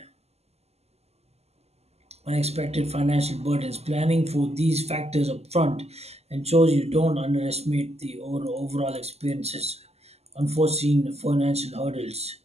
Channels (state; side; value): late; left; 0.30 ms